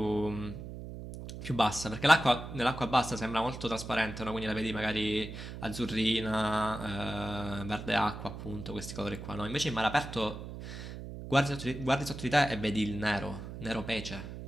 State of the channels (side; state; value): right; noise; hum, 10 dB below the sound